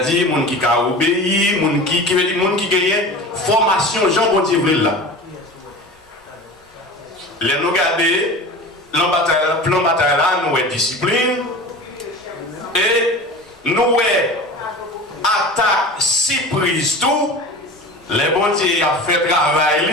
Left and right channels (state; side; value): normal; both; correlation 0.35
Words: les gens qui ont obéi, les gens qui gagnent formation, Jean bon Dieu là. Les nous garder, le plan bataille là, nous avons discipline. Et nous avons attaque surprise tout. Les bons dieux ont fait